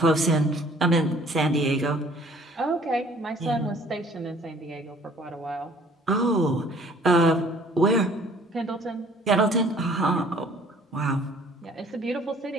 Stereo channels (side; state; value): both; normal; correlation 0.55